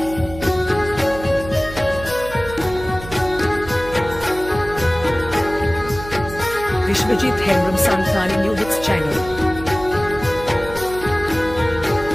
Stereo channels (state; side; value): noise; right; hum, 13 dB below the sound